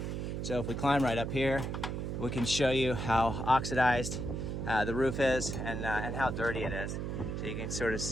So if we climb right up here, we can show you how oxidized the roof is and how dirty it is. So you can sort of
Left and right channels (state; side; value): noise; right; hum, 3 dB below the sound